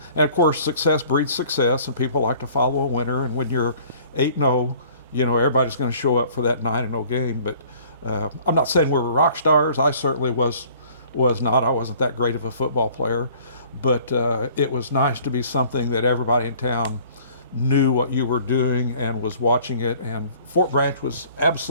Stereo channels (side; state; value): both; inverted; correlation -0.53